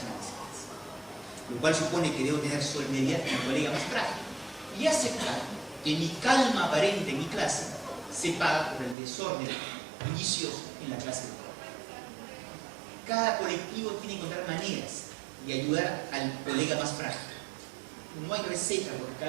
lo cual supone que debo tener solidaridad con el colega más frágil y aceptar que mi calma aparente en mi clase se paga por el desorden bullicioso en la clase de trabajo. Cada colectivo tiene que encontrar maneras de ayudar al colega más frágil. No hay receta, porque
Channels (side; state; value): left; drops out; at 9.0 s